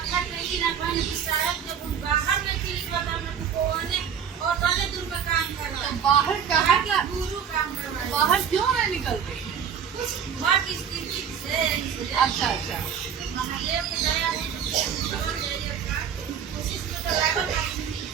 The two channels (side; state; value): left; quieter; 7.7 dB